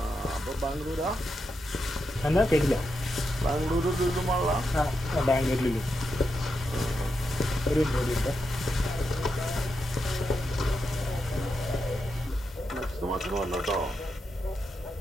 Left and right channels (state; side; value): normal; both; correlation 0.85